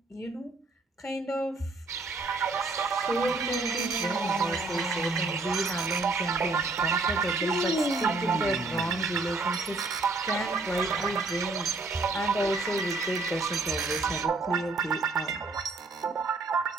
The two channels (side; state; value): left; quieter; 3.4 dB